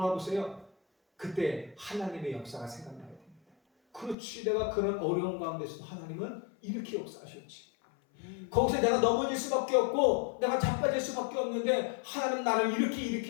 그때 하나님의 역사가 생각나야 됩니다. 그렇지, 내가 그런 어려운 가운데서도 하나님은 이렇게 역사하셨지. 거기서 내가 넘어질 수밖에 없고 내가 자빠질 수밖에 없는데 하나님 나를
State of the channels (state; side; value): drops out; right; at 4.2 s